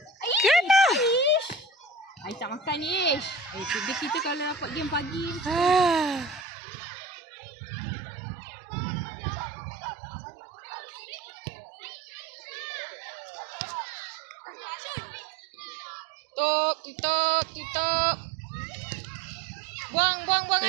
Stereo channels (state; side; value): drops out; left; at 6.5 s